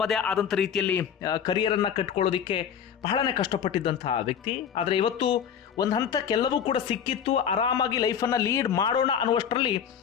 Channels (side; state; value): right; quieter; 8.1 dB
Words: ಆದಂಥ ರೀತಿಯಲ್ಲಿ ಕರಿಯರನ್ನು ಕಟ್ಕೊಳ್ಳೋದಕ್ಕೆ ಬಹಳನೇ ಕಷ್ಟಪಟ್ಟಿದ್ದಂತಹ ವ್ಯಕ್ತಿ. ಆದರೆ ಇವತ್ತು ಒಂದು ಹಂತಕ್ಕೆಲ್ಲವೂ ಕೂಡ ಸಿಕ್ಕಿತ್ತು, ಆರಾಮಾಗಿ ಲೈಫನ್ನು ಲೀಡ್ ಮಾಡೋಣ ಅನ್ನುವಷ್ಟರಲ್ಲಿ